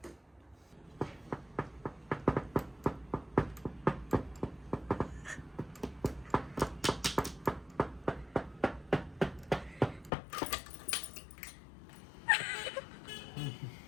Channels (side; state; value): right; drops out; at 10.1 s